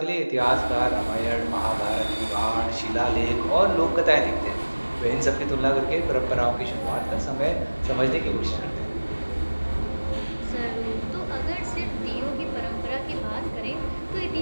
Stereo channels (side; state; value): both; inverted; correlation -1.00